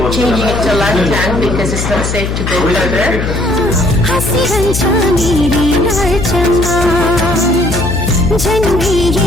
changing it to left tank because it's not safe to go further. जनगी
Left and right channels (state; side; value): noise; left; hum, 3 dB below the sound